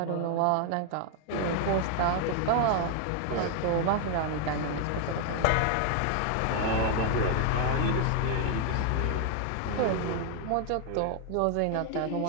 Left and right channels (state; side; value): different; both; correlation 0.00